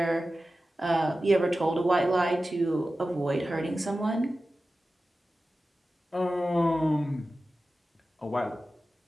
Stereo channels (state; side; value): normal; both; correlation 0.94